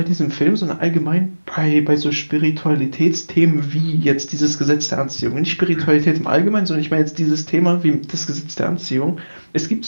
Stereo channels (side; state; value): both; inverted; correlation -1.00